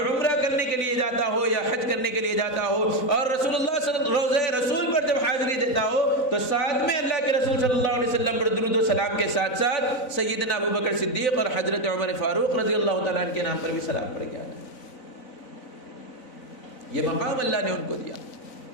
عمرہ کرنے کے لیے جاتا ہو یا حج کرنے کے لیے جاتا ہو اور رسول اللہ روضہ رسول پر جب حاضری دیتا ہو تو ساتھ میں اللہ کے رسول صلی اللہ علیہ وسلم پر درود و سلام کے ساتھ ساتھ سیدنا ابوبکر صدیق اور حضرت عمر فاروق رضی اللہ تعالیٰ عنہ کے نام پر بھی سلام پڑھ گیا۔ یہ مقام اللہ نے ان کو دیا.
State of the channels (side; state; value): right; late; 4.0 ms